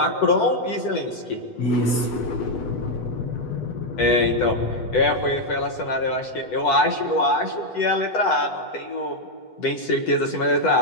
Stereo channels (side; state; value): right; late; 8.1 ms